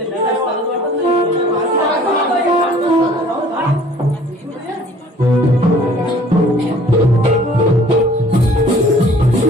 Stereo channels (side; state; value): both; normal; correlation 0.53